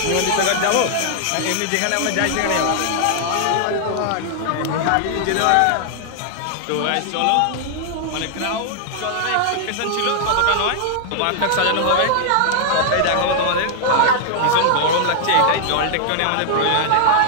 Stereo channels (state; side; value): different; both; correlation -0.01